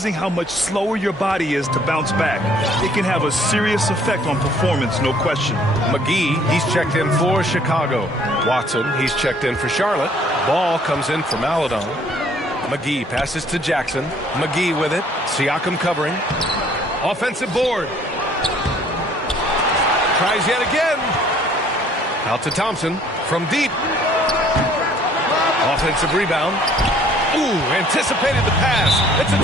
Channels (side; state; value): both; normal; correlation 0.59